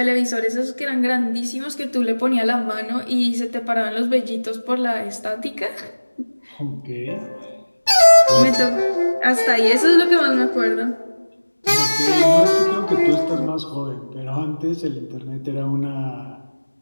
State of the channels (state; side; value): inverted; both; correlation -1.00